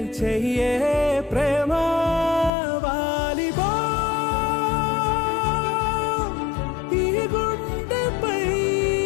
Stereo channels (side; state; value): right; drops out; at 2.5 s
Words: చెయ్యే ప్రేమ వాలిబా ఈ గుండెపై